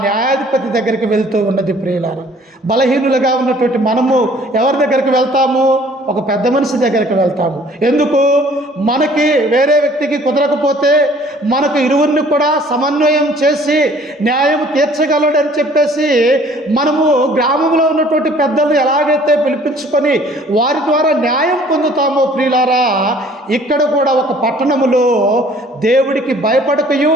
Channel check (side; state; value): both; normal; correlation 0.55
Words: న్యాయాధిపతి దగ్గరికి వెళ్తూ ఉన్నది ప్రియులారా. బలహీనులుగా ఉన్నటువంటి మనము ఎవరి దగ్గరికి వెళ్తాము? ఒక పెద్ద మనిషి దగ్గరికి వెళ్తాము. ఎందుకు? మనకి వేరే వ్యక్తికి కుదరకపోతే మనకు ఇరువురిని కూడా సమన్వయం చేసి న్యాయం తీర్చగలడని చెప్పేసి మనము గ్రామంలో ఉన్నటువంటి పెద్దలను ఎలాగైతే పిలిపించుకొని వారి ద్వారా న్యాయం పొందుతామో ప్రియులారా, ఇక్కడ కూడా ఒక పట్టణములో దేవుడికి భయపడకయు